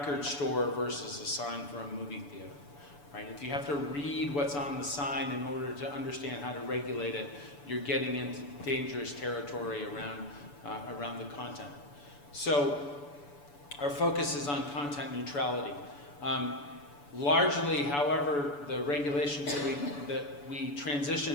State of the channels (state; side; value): late; right; 7.0 ms